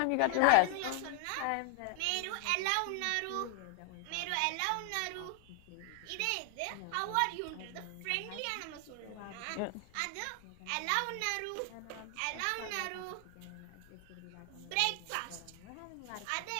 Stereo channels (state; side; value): different; both; correlation 0.00